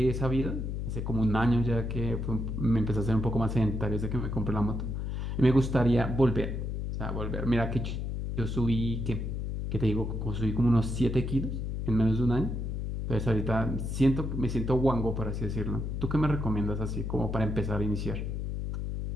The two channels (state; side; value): noise; left; hum, 3 dB below the sound